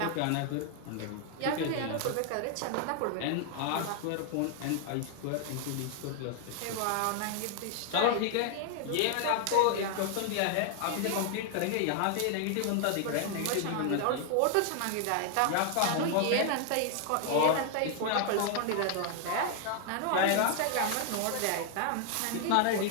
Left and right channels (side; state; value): both; different; correlation 0.00